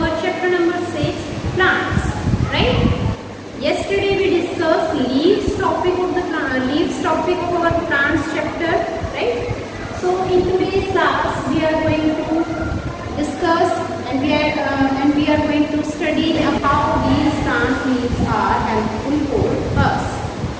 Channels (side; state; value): both; identical; correlation 1.00